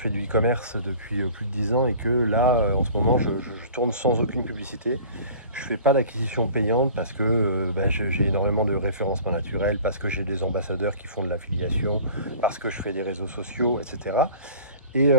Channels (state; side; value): inverted; both; correlation -0.45